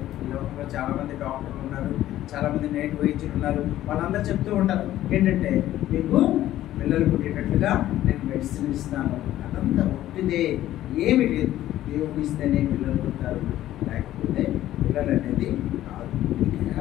ఈ లోకంలో చాలామంది డాక్టర్లు ఉన్నారు, చాలామంది నేటి వైద్యులు ఉన్నారు. వాళ్ళందరూ చెప్తూ ఉంటారు ఏంటంటే మీకు పిల్లలు పుట్టేటట్లుగా నేను మెడిసిన్ ఇస్తాను. అదంతా ఒట్టిదే, ఏమి లేదు. దేవుడు ఇస్తేనే పిల్లలు పుట్టారు, లేకపోతే పిల్లలు అనేది కాదు.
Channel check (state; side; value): quieter; right; 13.6 dB